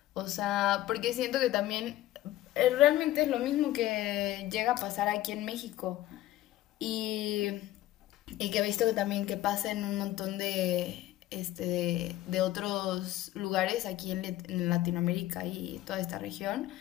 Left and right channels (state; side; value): quieter; right; 14.8 dB